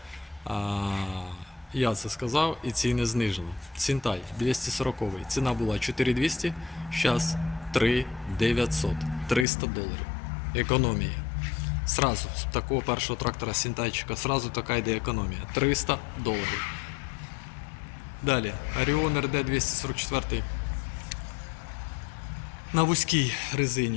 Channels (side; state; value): right; drops out; at 9.5 s